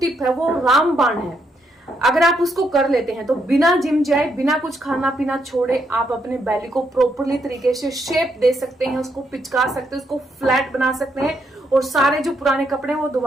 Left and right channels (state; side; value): normal; both; correlation 0.76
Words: है वो रामबाण है। अगर आप उसको कर लेते हैं तो बिना जिम जाए, बिना कुछ खाना पीना छोड़े, आप अपने बेली को प्रॉपरली तरीके से शेप दे सकते हैं, उसको पिचका सकते हैं, उसको फ्लैट बना सकते हैं और सारे जो पुराने कपड़े हैं वो